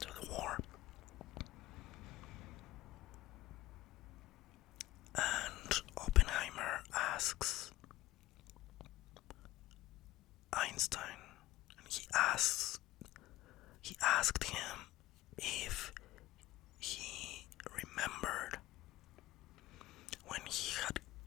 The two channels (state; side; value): quieter; right; 17.1 dB